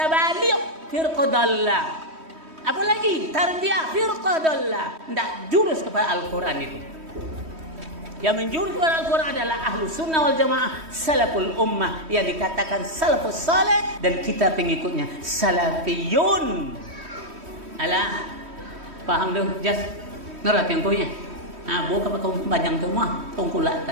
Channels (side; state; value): left; late; 3.1 ms